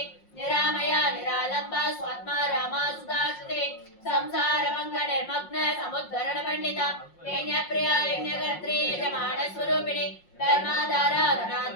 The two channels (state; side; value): late; right; 5.6 ms